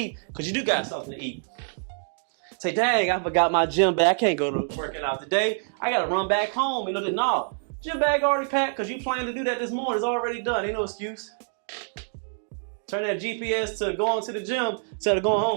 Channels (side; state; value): left; silent; digital silence